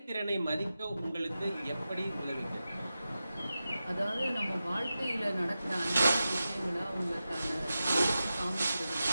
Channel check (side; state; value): both; inverted; correlation -0.93